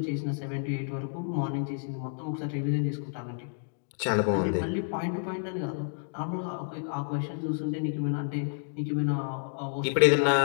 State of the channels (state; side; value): silent; right; digital silence